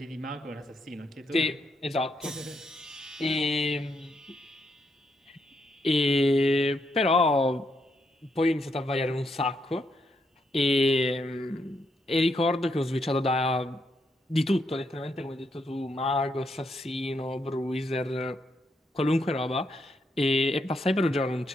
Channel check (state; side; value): normal; both; correlation 0.78